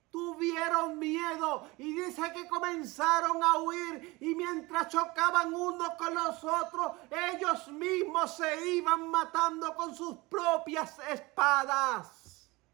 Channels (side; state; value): left; quieter; 22.7 dB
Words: tuvieron miedo y dice que comenzaron a huir, y mientras chocaban unos con los otros, ellos mismos se iban matando con sus propias espadas.